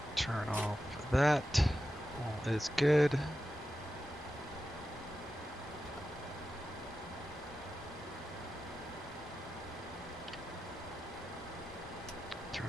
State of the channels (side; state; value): both; normal; correlation 0.91